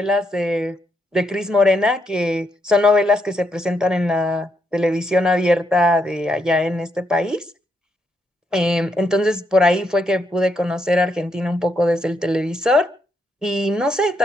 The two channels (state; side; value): normal; both; correlation 0.78